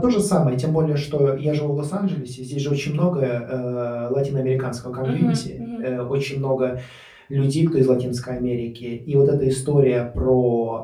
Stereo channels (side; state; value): both; identical; correlation 1.00